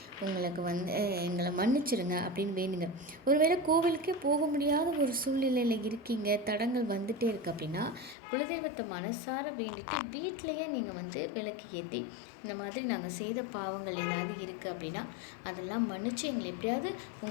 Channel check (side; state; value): right; drops out; at 8.2 s